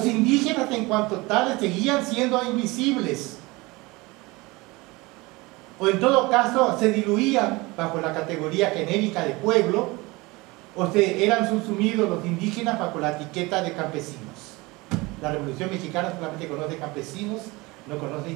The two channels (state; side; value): quieter; left; 23.2 dB